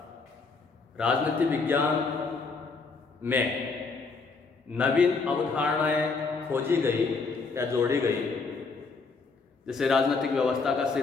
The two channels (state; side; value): quieter; right; 4.4 dB